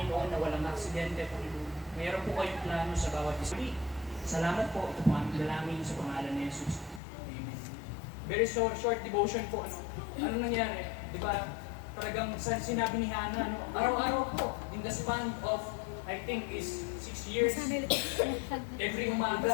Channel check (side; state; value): right; drops out; at 7.0 s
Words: na walang aksidente, Panginoon. Mayroon po kayong plano sa bawat isa. Salamat po. Ito po ang dalangin sa pangalan ni Jesus. Amen. Very short devotion po. Ano nangyari? Di ba? Talagang sinabi ni Hana, araw-araw po, in the span of, I think, is 6 years. Every